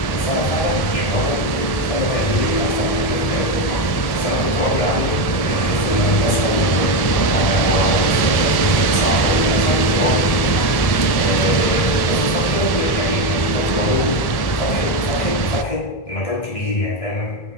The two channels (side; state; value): right; late; 1.7 ms